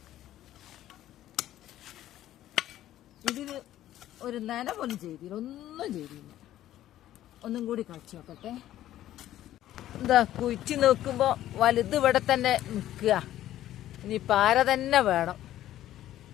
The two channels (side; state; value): right; quieter; 13.1 dB